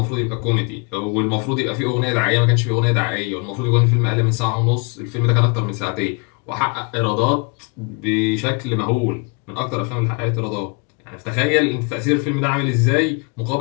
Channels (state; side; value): quieter; right; 32.5 dB